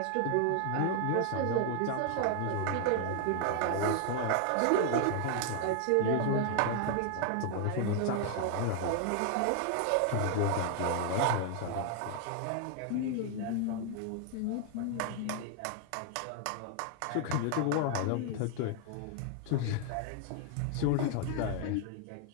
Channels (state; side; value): different; both; correlation 0.00